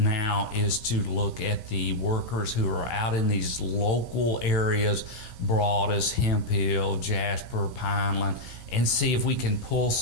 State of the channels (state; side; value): late; right; 16 ms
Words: is to look at the workers who are out in these local areas, Broadus, Hemphill, Jasper, Pineland, and see if we can pull